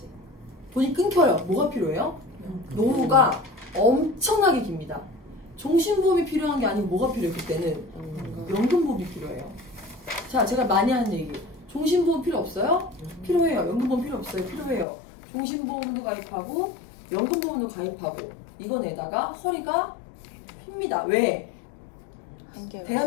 돈이 끊겨요. 뭐가 필요해요? 노후가 엄청나게 깁니다. 종신보험이 필요한 게 아니고 뭐가 필요해요? 그때는 연금보험이 필요해요. 자, 제가 많이 하는 얘기. 종신보험 필요 없어요? 필요해요. 연금보험 필요 없어요? 필요해요. 종신보험도 가입하고 연금보험도 가입하고 이거 내다가 허리가 핍니다. 왜?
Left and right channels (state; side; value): drops out; right; at 14.9 s